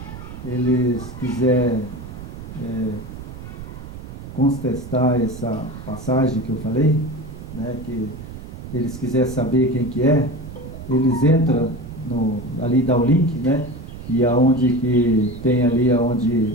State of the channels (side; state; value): right; noise; rumble, 12 dB below the sound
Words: eles quiserem contestar essa passagem que eu falei, né, que eles quiserem saber quem que é, eles entram ali, dá o link, né, e aonde que tem ali,